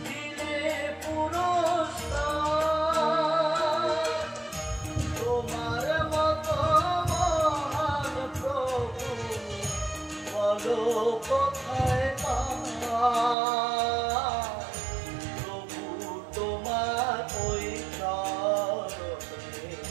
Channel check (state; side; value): drops out; left; at 13.4 s